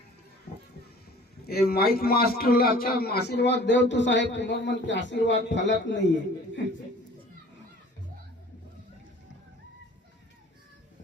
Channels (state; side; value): normal; both; correlation 0.48